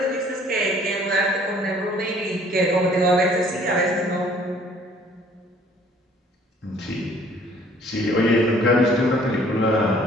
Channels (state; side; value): normal; both; correlation 0.57